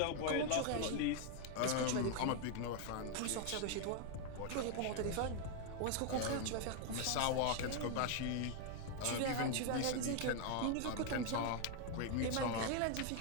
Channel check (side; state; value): both; different; correlation 0.01